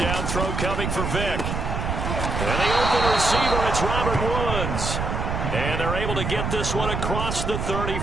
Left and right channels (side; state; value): right; noise; rumble, 2 dB below the sound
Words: throw coming for Vick. And the open receiver, it's Robert Woods. And they're able to get this one across the